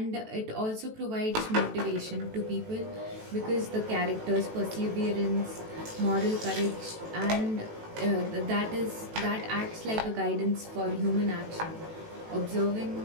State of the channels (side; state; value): left; late; 18 ms